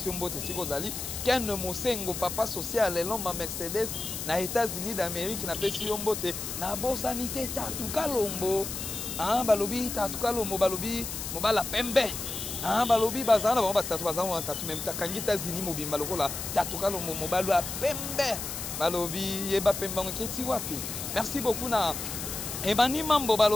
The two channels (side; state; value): left; noise; hiss, 6 dB below the sound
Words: un beau testigo Zali, Ken Mosengo, papa social, l'homme Mercedes, na États-Unis d'Amérique, n'a pas su un beau te, na bo sanité, Tatou Kalombo, ah, Balobi, Tatou Kalombo, Balobi, Mobala Pembe. Ah, balobi bazana ba tatu bazana tatu même takangi États-Unis mobimba lokola tatu kalo mobalo a pembe balobi yeba pembe ngeti wapi. Merci beaucoup na Emani Mambo